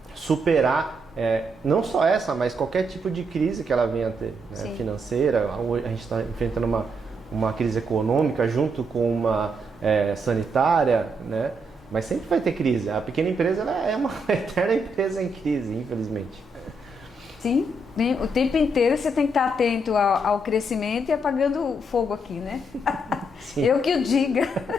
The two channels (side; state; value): both; normal; correlation 0.78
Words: superar não só essa, mas qualquer tipo de crise que ela venha a ter, né? Financeira. A gente está enfrentando uma crise econômica junto com uma sanitária, né? Mas sempre vai ter crise. A pequena empresa ela é uma eterna empresa em crise, infelizmente. Sim, o tempo inteiro você tem que estar atento ao crescimento e apagando o fogo aqui, né? Sim. Eu que o diga.